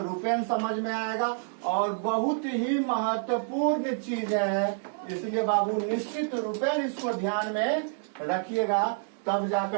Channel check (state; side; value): silent; left; digital silence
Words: समझ में आएगा। और बहुत ही महत्वपूर्ण चीज है इसलिए बाबू निश्चित रूपेण इसको ध्यान में रखिएगा, तब